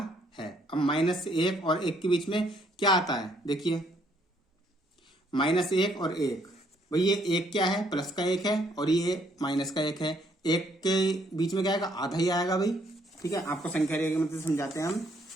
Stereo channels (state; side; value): normal; both; correlation 0.67